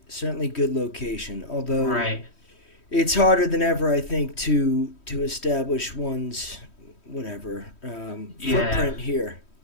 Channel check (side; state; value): right; late; 3.1 ms